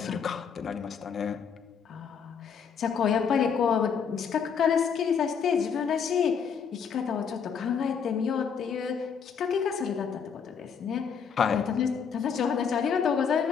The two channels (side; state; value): right; quieter; 6.8 dB